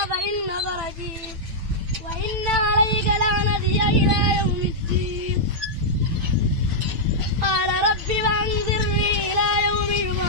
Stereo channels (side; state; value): left; late; 9.1 ms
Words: فإنك رجيم وإن عليك لعنتي إلى يوم